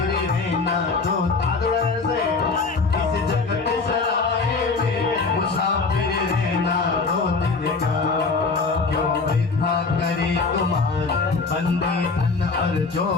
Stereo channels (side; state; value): right; quieter; 4.3 dB